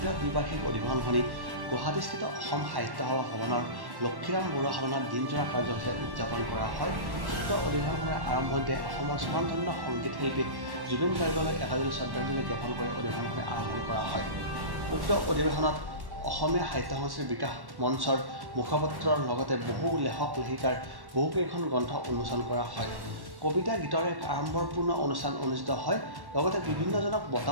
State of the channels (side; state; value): left; late; 1.1 ms